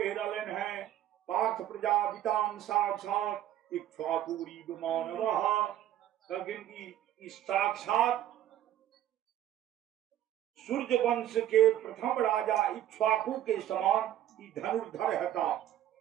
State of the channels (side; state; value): left; quieter; 12.0 dB